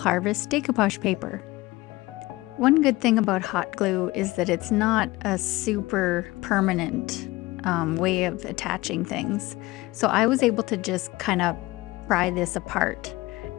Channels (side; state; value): right; quieter; 19.9 dB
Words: decoupage paper. One good thing about hot glue is that it's not a super permanent way of attaching things. So I was able to just kind of pry this apart.